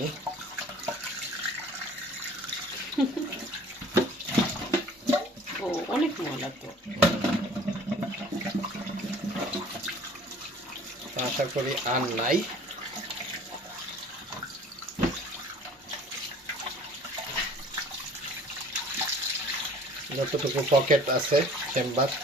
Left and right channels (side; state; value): both; normal; correlation 0.50